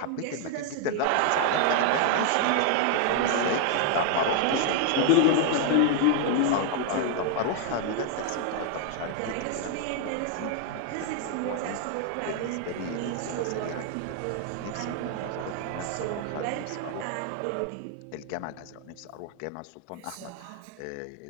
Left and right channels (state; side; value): different; both; correlation 0.00